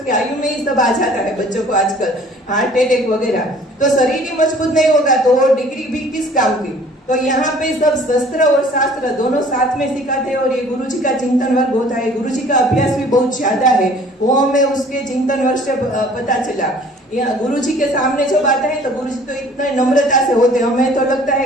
की आयु में ही सब आ जाता है बच्चों को आजकल, हार्ट अटैक वगैरह। तो शरीर ही मजबूत नहीं होगा तो वो डिग्री भी किस काम की। तो यहाँ पे सब शस्त्र और शास्त्र दोनों साथ में सिखाते हैं, और ये गुरुजी का चिंतन वर्ग होता है। गुरुजी का अभ्यास भी बहुत ज्यादा है, वो हमें उसके चिंतन वर्ग से पता चला। गुरुजी के सामने जब आता है तो गुरुजी तो इतने नम्रता से होते हैं, हमें तो लगता है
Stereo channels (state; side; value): normal; both; correlation 0.52